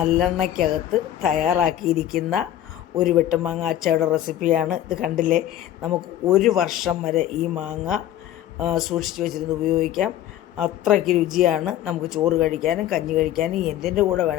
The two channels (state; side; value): quieter; right; 12.2 dB